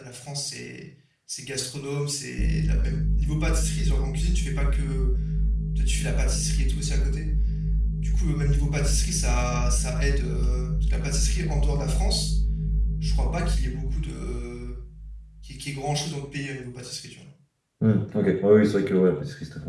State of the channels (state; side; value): identical; both; correlation 1.00